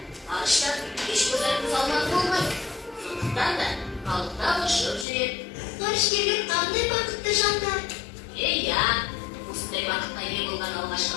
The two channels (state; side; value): drops out; right; at 5.1 s